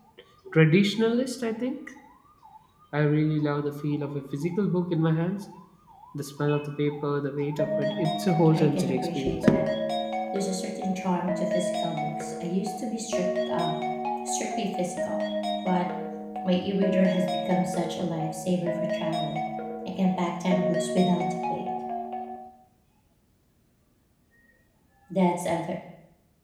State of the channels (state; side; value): identical; both; correlation 1.00